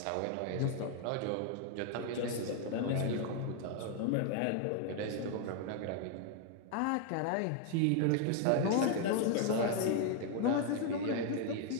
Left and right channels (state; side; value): different; both; correlation 0.00